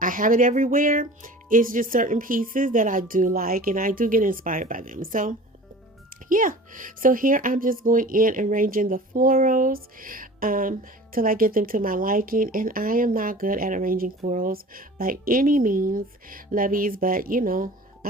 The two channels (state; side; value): normal; both; correlation 0.41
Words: have it everywhere. It's just certain pieces that I do like, and I do get inspired by them. So yeah, so here I'm just going in and arranging the florals till I get them to my liking. And I am not good at arranging florals by any means, lovies, but you know,